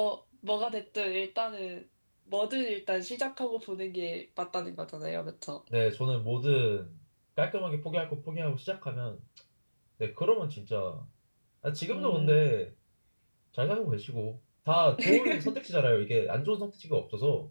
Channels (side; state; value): both; inverted; correlation -1.00